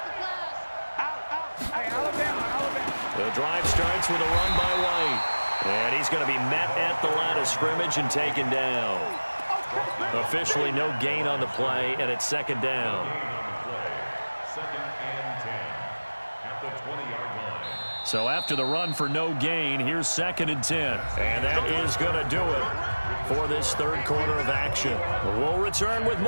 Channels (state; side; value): inverted; both; correlation -1.00